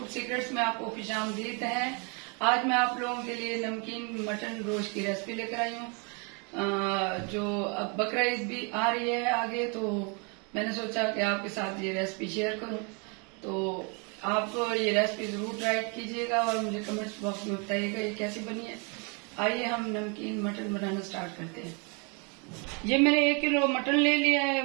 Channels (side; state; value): left; quieter; 33.7 dB